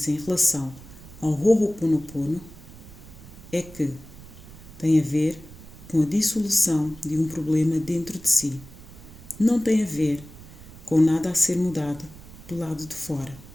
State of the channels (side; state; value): right; noise; rumble, 18 dB below the sound